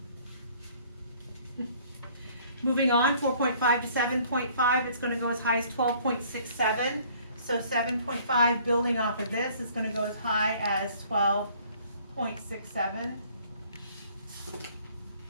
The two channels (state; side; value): inverted; both; correlation -0.57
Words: Moving on, 4.5 to 7.5, it's going to go as high as 12.67. So 7.5, building off of this, is going to go as high as 12.67.